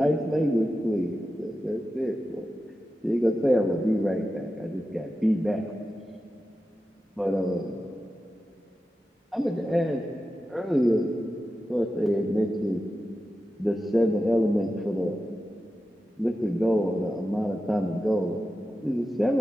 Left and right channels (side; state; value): both; normal; correlation 0.92